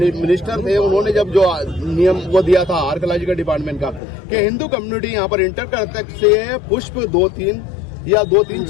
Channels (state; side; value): drops out; right; at 4.0 s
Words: थे, उन्होंने जब जो नियम वो दिया था आर्कोलॉजिकल डिपार्टमेंट का कि हिंदू कम्युनिटी यहाँ पर इंटर कर सकते हैं पुष्प 2-3 या 2-3